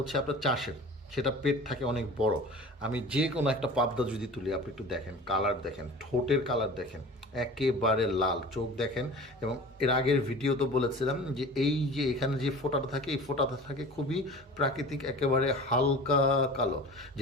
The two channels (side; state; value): both; normal; correlation 0.39